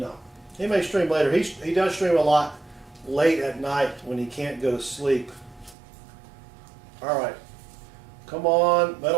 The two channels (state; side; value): drops out; left; at 5.8 s